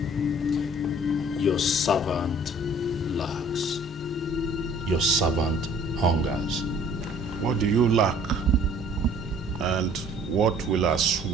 Your servant lacks. Your servant hungers. What do you lack? And what will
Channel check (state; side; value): normal; both; correlation 0.54